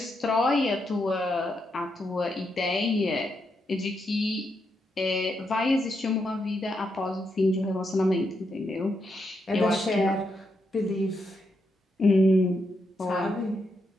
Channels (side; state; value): both; normal; correlation 0.82